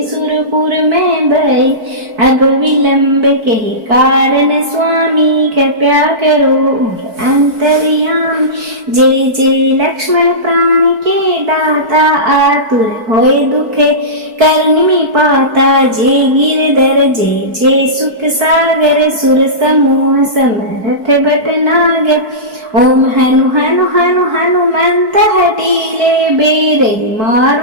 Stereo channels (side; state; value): left; late; 4.6 ms